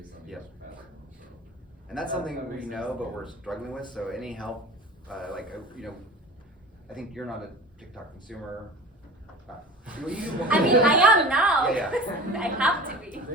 on each platform. So. And that's something we know, but we're struggling with. So any help, I think you're not a TikTok consumer. I mean, I am now. Yeah. I have to be.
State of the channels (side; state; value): both; normal; correlation 0.36